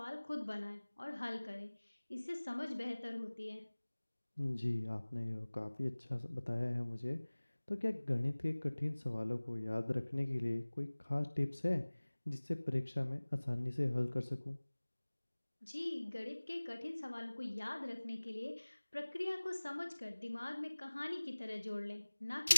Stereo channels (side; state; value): both; inverted; correlation -1.00